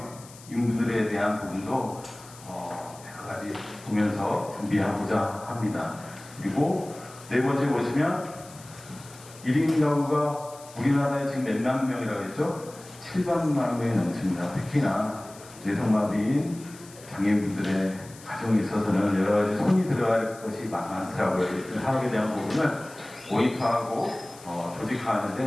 인분들에 대한 부분도 여러 가지 보면서 준비하고자 합니다. 그리고 네 번째 보시면 1인 가구가 우리나라에 지금 몇만 명이라고 했죠? 700만 명이 넘습니다. 특히나 뇌성마비인 장애인분들의 가정에 있어서는 여러 가지 손이 들어갈 것이 많더라고요. 사업에 대한 부분을 모니터하고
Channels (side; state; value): left; noise; hiss, 20 dB below the sound